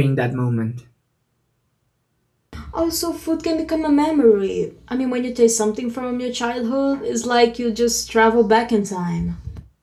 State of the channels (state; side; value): identical; both; correlation 1.00